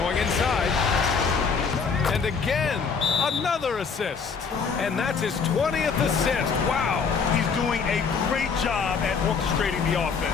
inside. And again, another assist. And that's his 20th assist. Wow. He's doing a great job at orchestrating the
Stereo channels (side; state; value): right; quieter; 5.6 dB